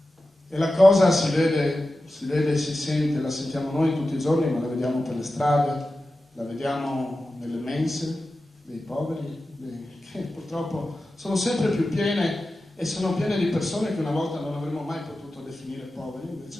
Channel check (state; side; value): normal; both; correlation 0.93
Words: e la cosa si vede, si sente, la sentiamo noi tutti i giorni, ma la vediamo per le strade, la vediamo nelle mense dei poveri, che purtroppo sono sempre più piene e sono piene di persone che una volta non avremmo mai potuto definire poveri,